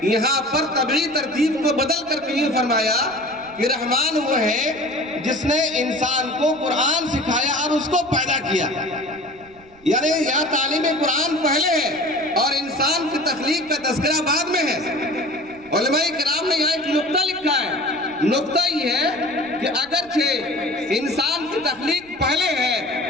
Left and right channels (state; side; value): noise; right; rumble, 26 dB below the sound